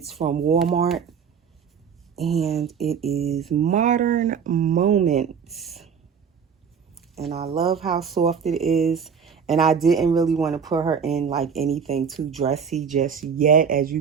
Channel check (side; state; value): left; quieter; 6.8 dB